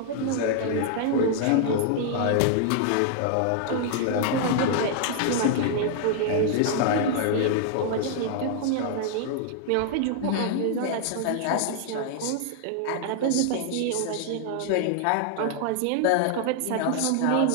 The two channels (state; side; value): different; both; correlation 0.00